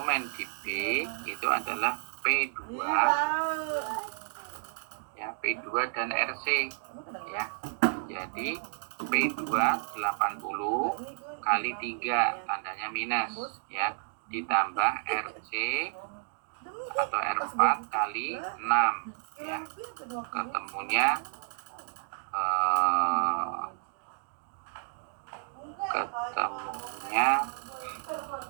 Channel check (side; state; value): left; silent; digital silence